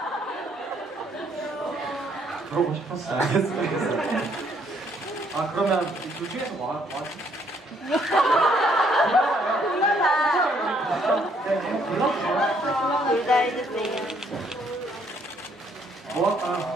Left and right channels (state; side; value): normal; both; correlation 0.68